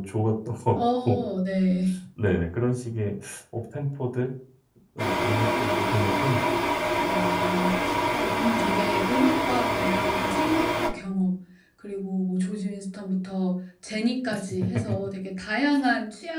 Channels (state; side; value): identical; both; correlation 1.00